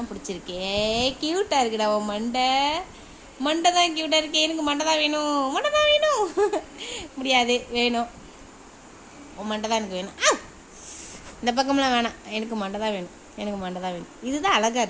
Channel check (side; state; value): both; identical; correlation 1.00